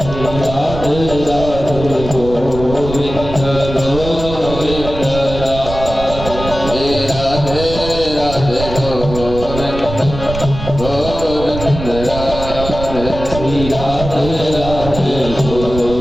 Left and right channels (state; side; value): noise; right; rumble, 8 dB below the sound